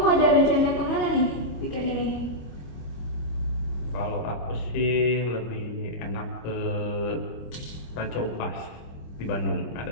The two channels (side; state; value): right; late; 25 ms